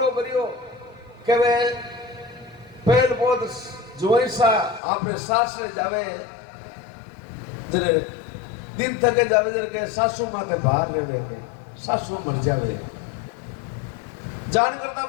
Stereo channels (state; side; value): drops out; right; at 4.8 s